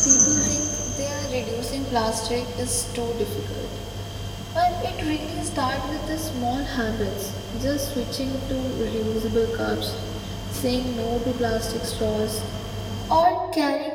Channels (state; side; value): identical; both; correlation 1.00